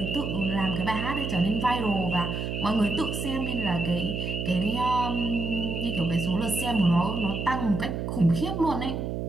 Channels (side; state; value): right; noise; hum, 3 dB below the sound